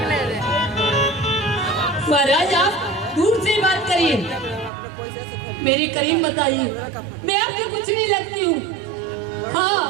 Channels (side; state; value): left; drops out; at 4.7 s